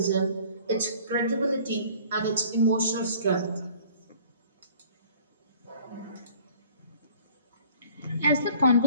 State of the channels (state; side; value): inverted; both; correlation -0.52